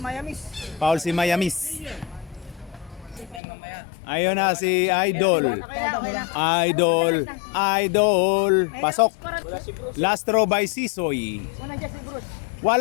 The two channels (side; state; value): right; drops out; at 3.4 s